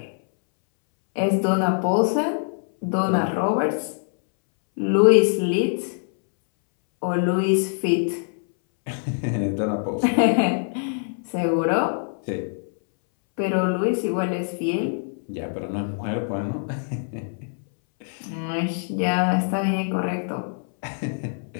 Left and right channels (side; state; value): right; silent; 63 dB below the other